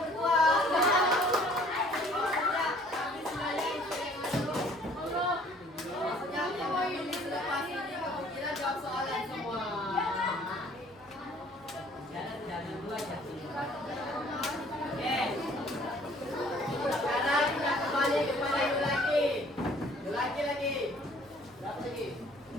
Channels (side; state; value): both; normal; correlation 0.56